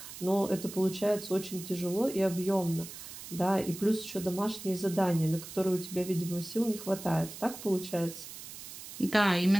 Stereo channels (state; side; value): noise; right; hiss, 12 dB below the sound